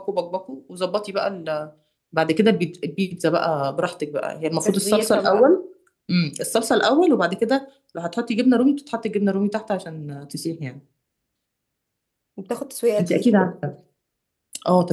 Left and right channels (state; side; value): identical; both; correlation 1.00